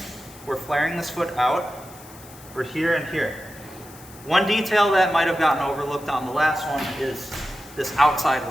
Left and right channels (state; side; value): noise; left; hiss, 20 dB below the sound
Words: we're flaring this foot out, we're here and here. One detail that might have gotten overlooked on the last one is this outside